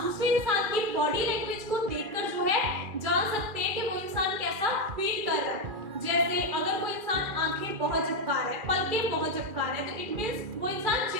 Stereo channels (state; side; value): late; left; 2.4 ms